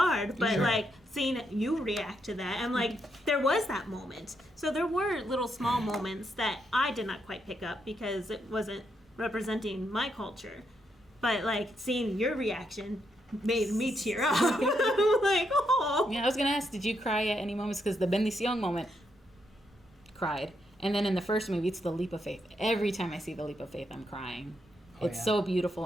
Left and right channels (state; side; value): normal; both; correlation 0.79